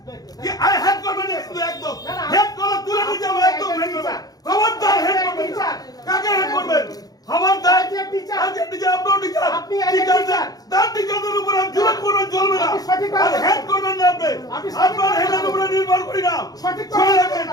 কি I head করবেন না শুধু একদম হেড করলে তুলে নিয়ে যাবো একদম হেড করবেন খবরদার হেড করবেন কাকে হেড করবেন খবরদার টিচার আপনার টিচার আপনি টিচার তার টিচারদের উপর আমি জুলুম করবেন চলবে না হেড করবেন না আপনি আপনার হেডের উপরে নির্ভর করি না সঠিক চলে যাবেন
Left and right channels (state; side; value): late; right; 0.18 ms